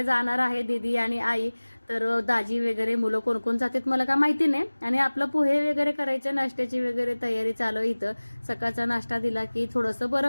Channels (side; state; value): both; inverted; correlation -1.00